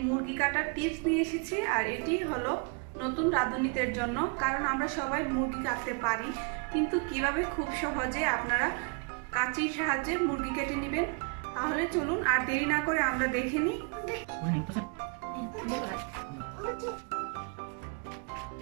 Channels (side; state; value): left; quieter; 34.6 dB